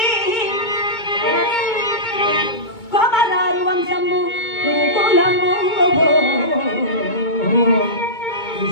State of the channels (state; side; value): late; right; 2.2 ms